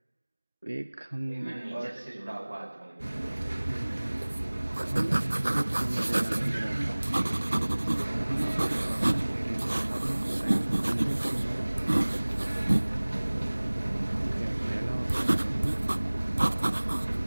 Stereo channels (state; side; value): inverted; both; correlation -1.00